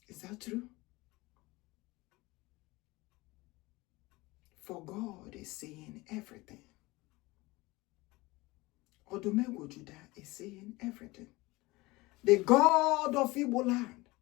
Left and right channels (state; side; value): quieter; right; 21.7 dB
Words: Is that true? For God is seeing everything. Odumegwu Judah is seeing everything. The God of Igbo land.